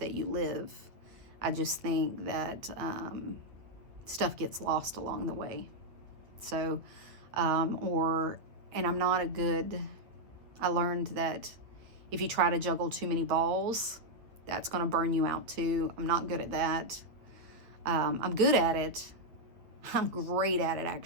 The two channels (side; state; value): left; late; 8.8 ms